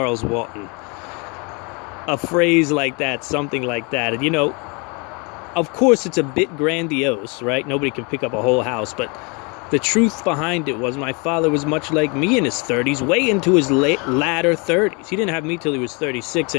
Walton. A phrase like that, something like that. And of course, it's a bit grandiose, right? Nobody can pick up a whole house. But the truth behind it was my father was much like me in his 30s, way into his latter 30s. He didn't have me till he was 36.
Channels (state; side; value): quieter; right; 31.2 dB